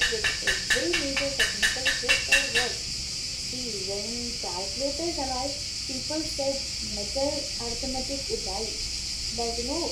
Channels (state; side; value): identical; both; correlation 1.00